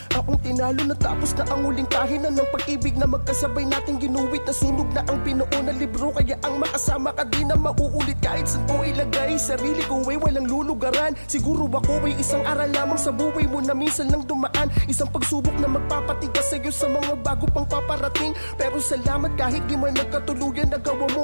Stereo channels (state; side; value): inverted; both; correlation -1.00